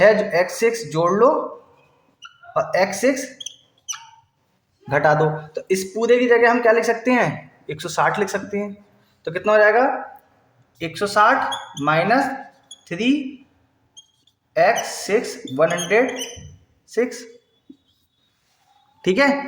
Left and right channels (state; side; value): identical; both; correlation 1.00